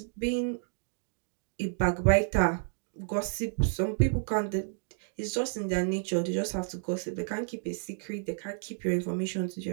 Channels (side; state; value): left; silent; digital silence